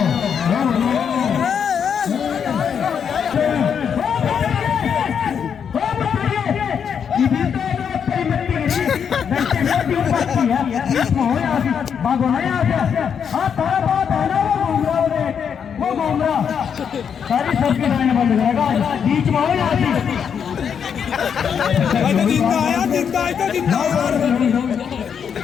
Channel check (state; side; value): quieter; right; 7.4 dB